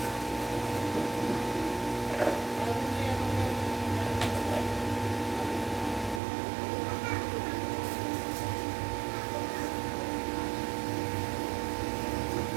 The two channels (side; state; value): left; drops out; at 6.2 s